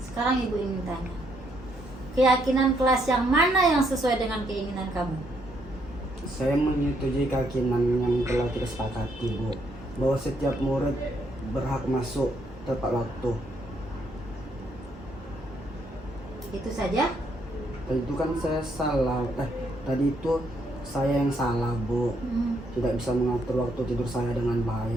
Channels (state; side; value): normal; both; correlation 0.73